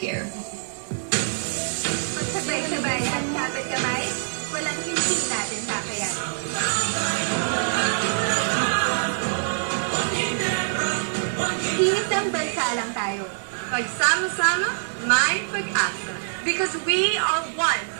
Magsabay-sabay at kapit kamay, walang hindi natin kakayanin. Iisang bansa lang tayo. Pagsama-sama, may pag-asa. Because we are one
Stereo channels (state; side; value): silent; left; digital silence